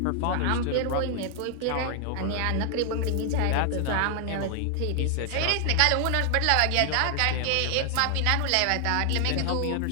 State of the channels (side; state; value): both; different; correlation 0.00